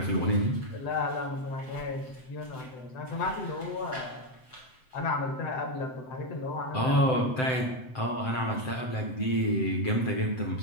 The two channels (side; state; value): right; late; 7.8 ms